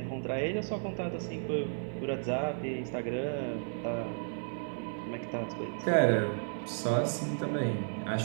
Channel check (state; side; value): silent; left; 55 dB below the other